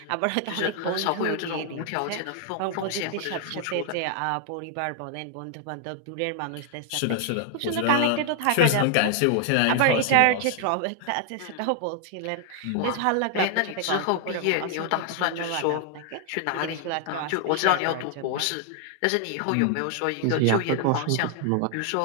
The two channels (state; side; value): different; both; correlation 0.00